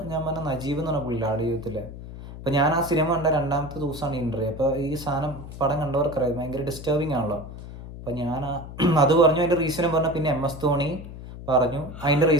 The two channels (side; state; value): left; noise; hum, 12 dB below the sound